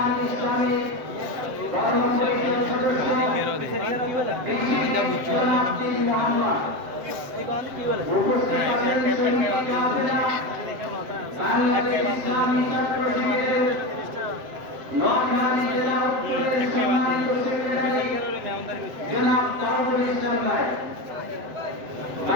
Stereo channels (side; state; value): left; late; 7.7 ms